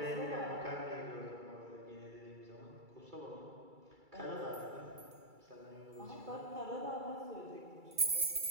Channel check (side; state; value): left; late; 2.3 ms